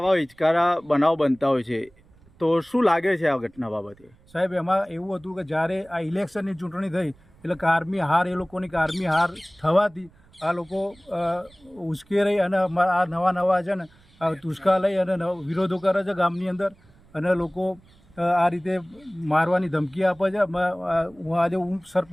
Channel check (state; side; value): noise; right; rumble, 29 dB below the sound